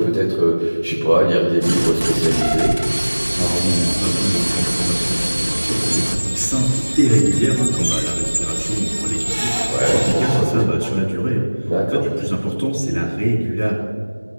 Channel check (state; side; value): inverted; both; correlation -1.00